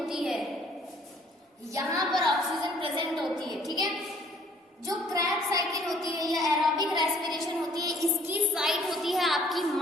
है, यहां पर ऑक्सीजन प्रेजेंट होती है। ठीक है, जो क्रेब्स साइकिल होती है या एरोबिक रेस्पिरेशन होती है, इसकी साइट होती है आपकी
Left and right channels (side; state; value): both; normal; correlation 0.58